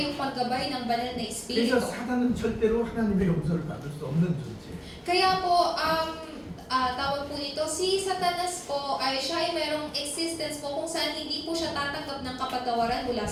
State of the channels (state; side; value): identical; both; correlation 1.00